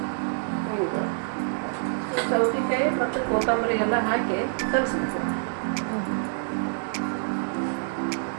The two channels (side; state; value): left; silent; 61 dB below the other